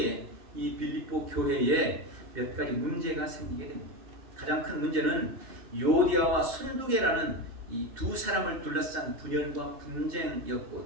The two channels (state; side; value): late; left; 2.8 ms